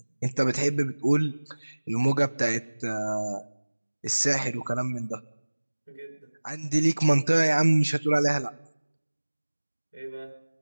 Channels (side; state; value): both; inverted; correlation -1.00